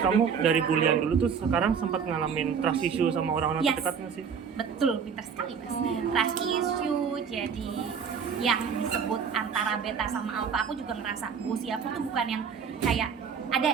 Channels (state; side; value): quieter; left; 6.6 dB